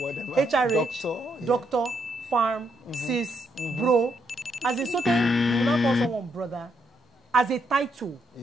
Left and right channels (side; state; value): both; normal; correlation 0.77